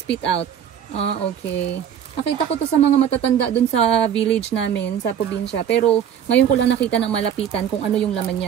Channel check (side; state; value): left; quieter; 9.1 dB